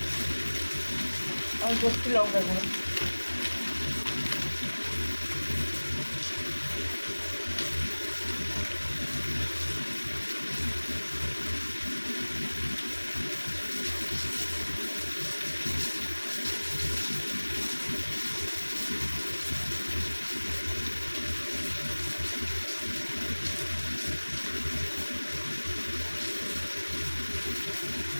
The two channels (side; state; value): both; inverted; correlation -1.00